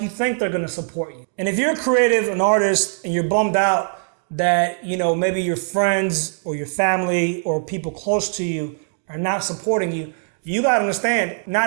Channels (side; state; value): left; silent; digital silence